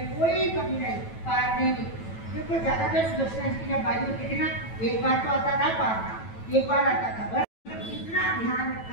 कोई कमी नहीं, पार नहीं। देखो ज्यादातर सुदर्शन की जब बारी होती थी ना, एक बार तो आता था पारना, एक बार आता था बस। इतना ध्यान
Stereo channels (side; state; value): right; late; 9.1 ms